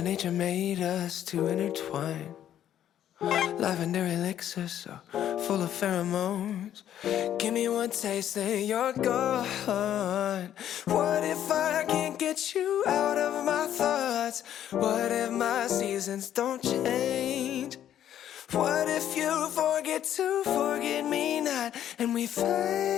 Nature made us to intertwine. Lavender elixir so full of pheromones. Give me one taste and you're gone. What if I can't get you out of my thoughts? What if my seasons don't change? What if you forget to forget me not, and we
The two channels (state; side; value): quieter; right; 10.9 dB